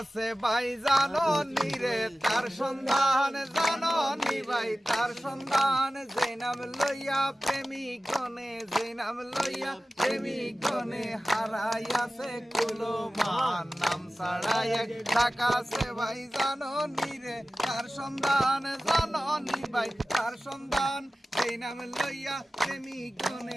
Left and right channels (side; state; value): both; normal; correlation 0.96